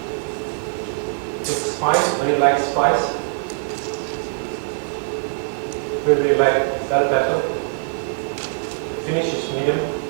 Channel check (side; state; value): left; silent; digital silence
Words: It's spice, very light spice. Really light bell pepper. Finish is medium.